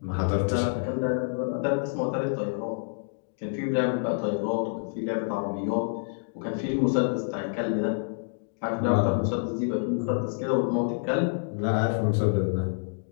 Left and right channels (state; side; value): silent; right; digital silence